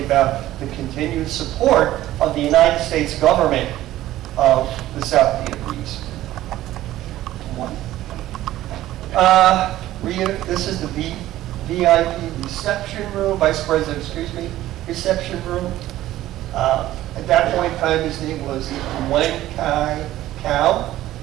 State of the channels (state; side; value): quieter; left; 14.6 dB